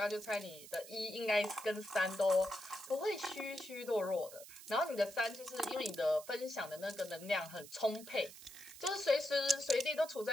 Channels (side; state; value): right; noise; hiss, 16 dB below the sound